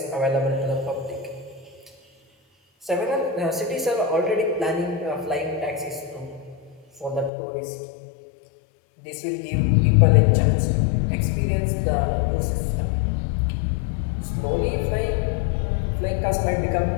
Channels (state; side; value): drops out; right; at 7.3 s